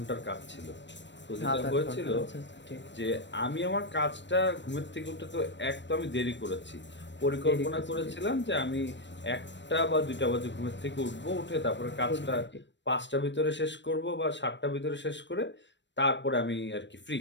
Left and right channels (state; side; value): late; right; 0.53 ms